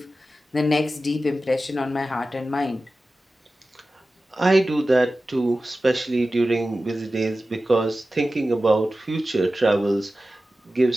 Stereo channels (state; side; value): normal; both; correlation 0.95